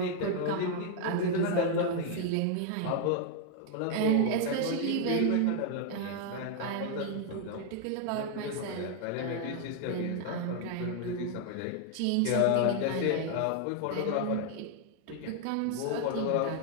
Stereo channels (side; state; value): both; different; correlation 0.00